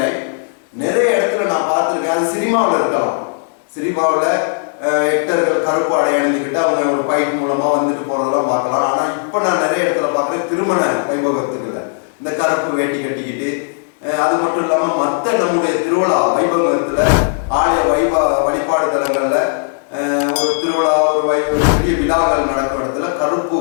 நிறைய இடத்துல நான் பார்த்துருக்கேன். அது சினிமாவில் இருக்கலாம். சினிமாவில் ஆக்டர்கள் கருப்பாடை அணிந்துக்கிட்டு அவங்க ஒரு பைக் மூலமா வந்துட்டு போறதெல்லாம் பார்க்கலாம். ஆனா இப்ப நான் நிறைய இடத்துல பார்க்குறேன், திருமண வைபவத்துக்குள்ள இந்த கருப்பு வேட்டி கட்டிக்கிட்டு, அது மட்டும் இல்லாம மற்ற நம்முடைய திருவிழா வைபவத்துல ஆலய வழிபாடு தலங்கள்ல ஒரு திருவிழா, ஒரு பெரிய விழாக்கள் நடக்கும் இடத்துல கருப்பு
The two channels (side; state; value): right; silent; digital silence